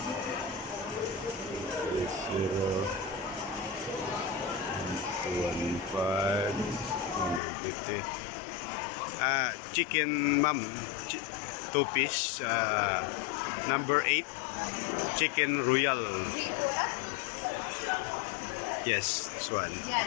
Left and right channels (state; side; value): drops out; right; at 7.4 s